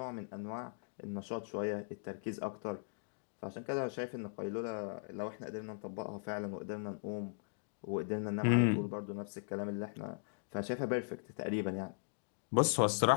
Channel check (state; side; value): silent; right; digital silence